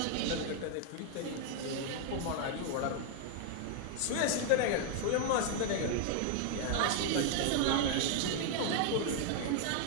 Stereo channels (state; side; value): different; both; correlation 0.00